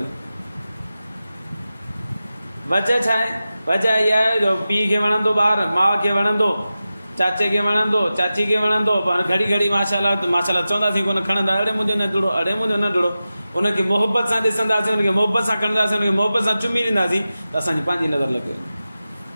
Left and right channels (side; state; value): both; inverted; correlation -0.94